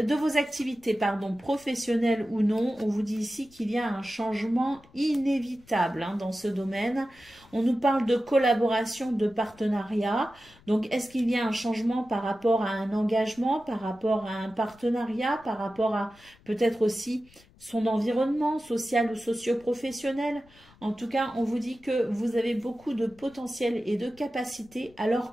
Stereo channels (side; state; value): left; noise; rumble, 27 dB below the sound